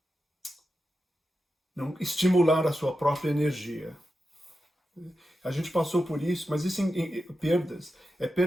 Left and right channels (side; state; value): both; normal; correlation 0.90